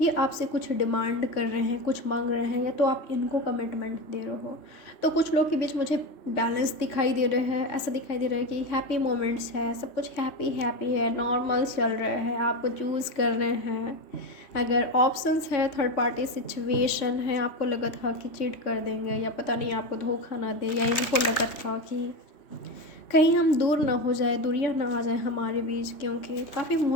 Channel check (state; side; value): late; right; 3.6 ms